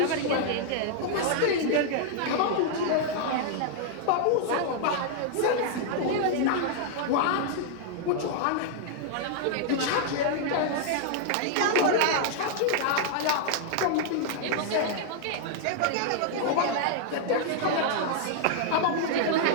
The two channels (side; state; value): both; different; correlation -0.01